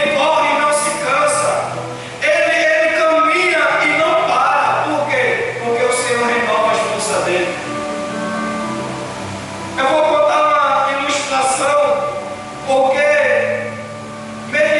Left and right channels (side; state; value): both; identical; correlation 1.00